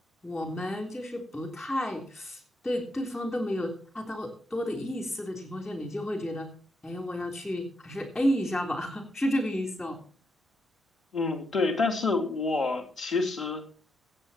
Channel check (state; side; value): normal; both; correlation 0.81